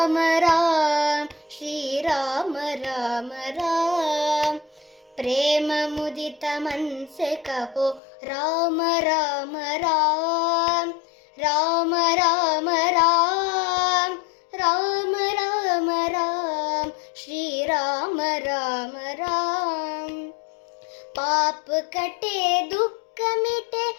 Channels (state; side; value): drops out; right; at 8.0 s